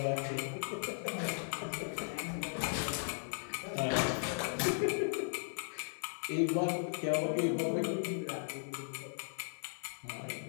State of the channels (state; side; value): silent; right; 53 dB below the other